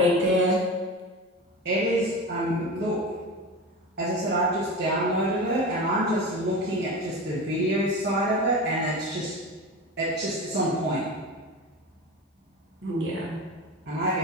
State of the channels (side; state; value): both; normal; correlation 0.27